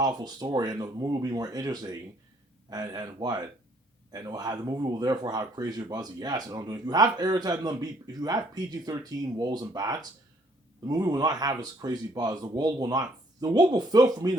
story, and the movie will be more interesting. And what? And it'll have, the movie will therefore have crazier buzzy. Yes, and I'm doing. If you have Aerith and them be, if you have PG-13 wolves and bats, the movie will not have this crazy buzz. The world will not. The world will feel for me and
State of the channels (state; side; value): normal; both; correlation 0.64